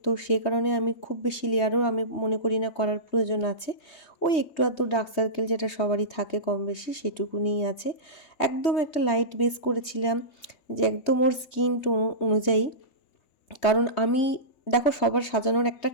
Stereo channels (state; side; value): late; right; 3.2 ms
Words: তো সেই কারণে আমি খুব বেশি লেয়ারও আমি মনে করি না করার প্রয়োজন আছে। ওই একটু আধটু ডার্ক সার্কেল যেটা সবারই থাকে কম বেশি সেটুকুনিই আছে। একদম একটা লাইট বেস করেছিলাম, যে একদম ওর স্কিন টোন অনুযায়ী। কারণ আমি, দেখো সবার সাজানোর একটা